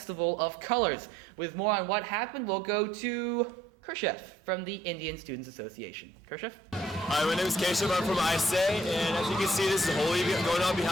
of Colors. With more on what happened, we'll go to Kershev from the Indian Students Association. Kershev? Hi, my name is Keshav. I'm from ISA, and as you can see, this is Holi going on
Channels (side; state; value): both; normal; correlation 0.65